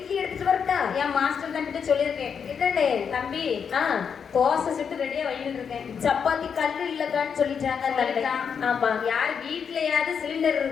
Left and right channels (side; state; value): right; quieter; 6.8 dB